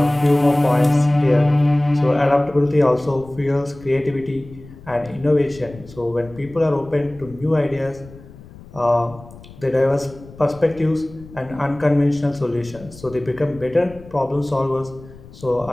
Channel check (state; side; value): noise; left; rumble, 19 dB below the sound